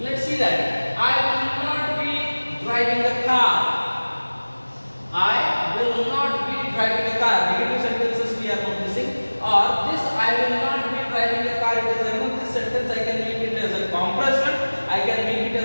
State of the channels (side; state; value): both; inverted; correlation -1.00